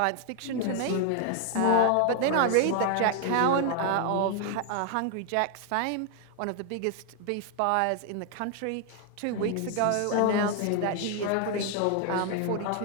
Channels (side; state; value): both; different; correlation 0.00